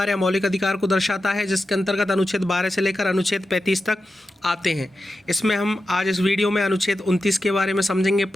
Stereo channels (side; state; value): both; normal; correlation 0.91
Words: या मौलिक अधिकार को दर्शाता है, जिसके अंतर्गत अनुच्छेद 12 से लेकर अनुच्छेद 35 तक आते हैं। इसमें हम आज इस वीडियो में अनुच्छेद 29 के बारे में समझेंगे,